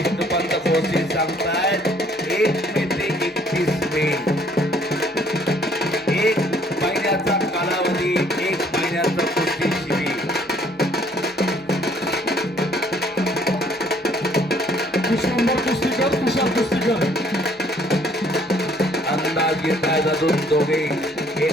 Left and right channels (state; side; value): normal; both; correlation 0.61